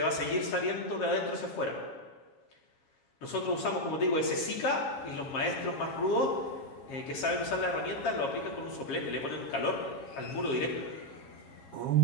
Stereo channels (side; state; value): right; late; 7.3 ms